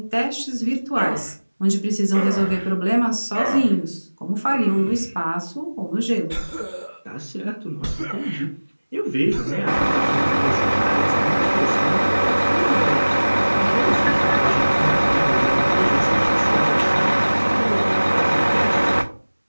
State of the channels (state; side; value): inverted; both; correlation -1.00